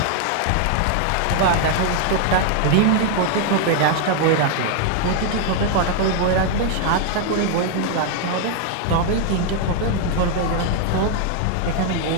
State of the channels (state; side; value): different; both; correlation 0.00